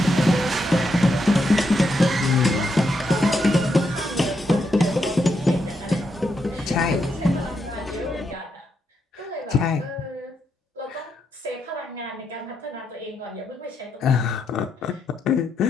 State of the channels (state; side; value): normal; both; correlation 0.81